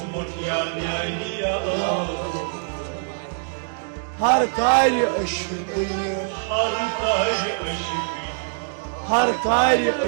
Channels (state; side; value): silent; left; digital silence